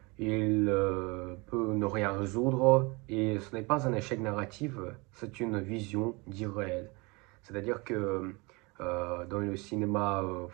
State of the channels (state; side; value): quieter; left; 26.7 dB